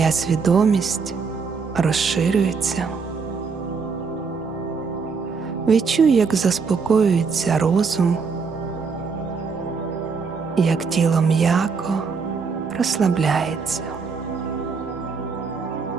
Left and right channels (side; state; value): left; quieter; 5.2 dB